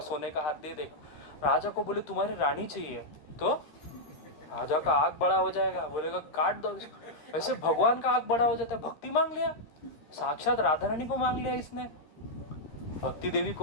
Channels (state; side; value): late; right; 13 ms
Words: सोने का हाथ दे देगा। राजा को बोले तुम्हारी रानी चाहिए, तो राजा का आग बड़ा हो जाएगा, बोलेगा काट दो इसको। वैसे भगवान का आग बड़ा हो जाता है, भक्ति मांग लिया, साक्षात राधा रानी को मांग लिया इसने। भक्ति देवी